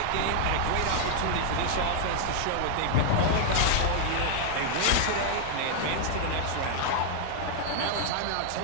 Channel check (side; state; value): both; different; correlation -0.01